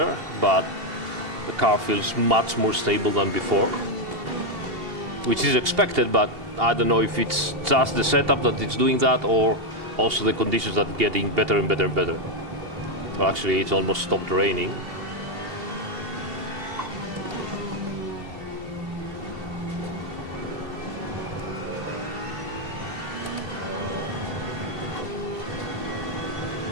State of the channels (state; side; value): late; left; 2.8 ms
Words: but the car feels much more stable than before, which is expected, but I don't know if it's just the setup that it's doing that or also the conditions that are getting better and better and better. Well, actually, it's almost stopped raining.